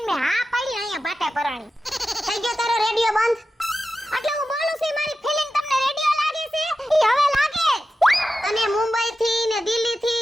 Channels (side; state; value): both; normal; correlation 0.92